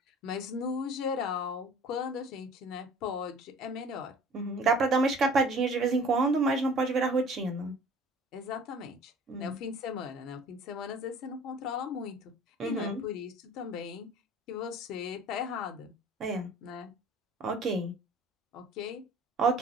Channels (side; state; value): both; normal; correlation 0.47